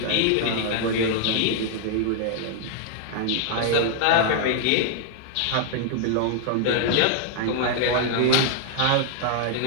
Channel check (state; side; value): different; both; correlation 0.00